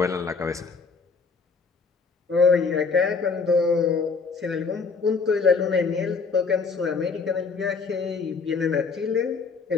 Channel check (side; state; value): right; quieter; 4.9 dB